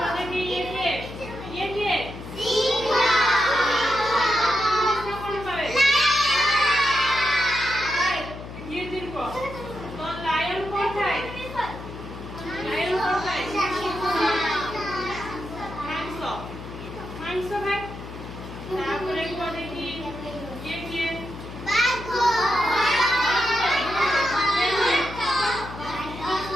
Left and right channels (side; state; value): left; noise; hum, 12 dB below the sound